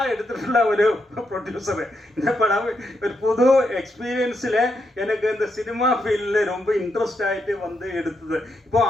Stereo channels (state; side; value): normal; both; correlation 0.81